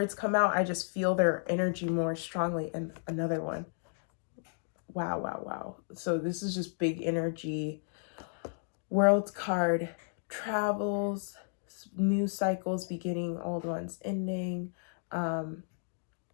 come out, I just feel their energy more strongly. And another one. Wow, wow, wow. So this is just big energy. World card, travels, new cycles beginning, old ones ending.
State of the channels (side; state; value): right; silent; 56 dB below the other